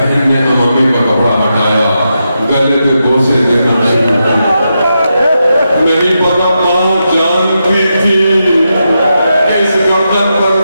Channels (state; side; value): inverted; both; correlation -0.86